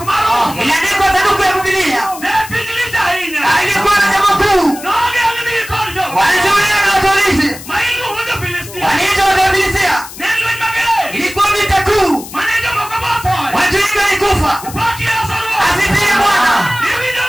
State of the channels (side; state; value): left; noise; hiss, 14 dB below the sound